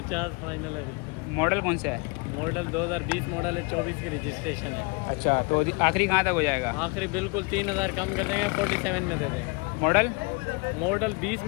फाइनल है। मॉडल कौन सा है? मॉडल 2020 मॉडल है, 24 की रजिस्ट्रेशन है। अच्छा, तो आखिरी कहाँ तक हो जाएगा? आखिरी बिल्कुल 3,000 कम कर देंगे, 47 में दे देंगे। मॉडल 20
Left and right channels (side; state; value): right; quieter; 30.2 dB